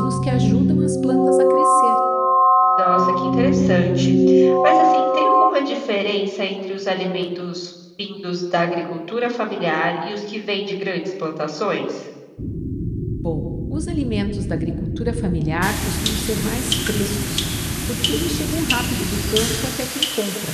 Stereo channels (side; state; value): both; identical; correlation 1.00